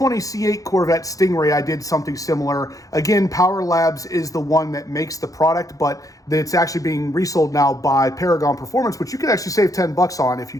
C8 Corvette Stingray, I did something similar. Again, Power Labs is the one that makes the product, but it's actually being resold now by Paragon Performance, which you can actually save 10 bucks on if you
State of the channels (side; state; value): right; late; 0.17 ms